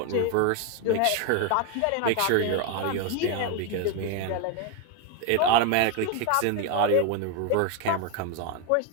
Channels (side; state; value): both; different; correlation 0.01